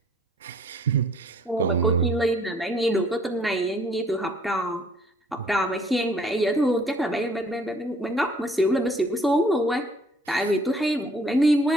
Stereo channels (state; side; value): normal; both; correlation 0.60